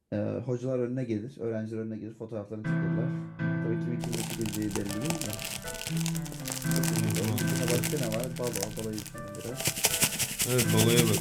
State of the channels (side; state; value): both; identical; correlation 1.00